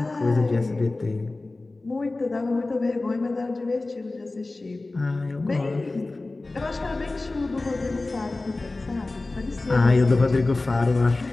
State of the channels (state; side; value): quieter; right; 3.2 dB